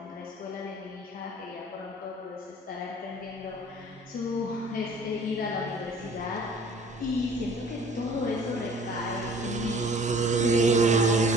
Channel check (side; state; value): both; normal; correlation 0.51